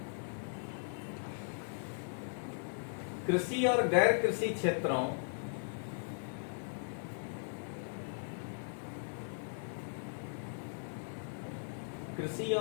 कृषि और गैर कृषि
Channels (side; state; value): right; silent; 52 dB below the other